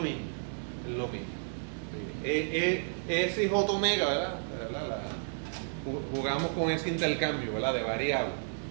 Es lo mismo. S y J omega, ¿verdad? Jugamos con ese intercambio, ¿verdad? De variables.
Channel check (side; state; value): left; silent; 56 dB below the other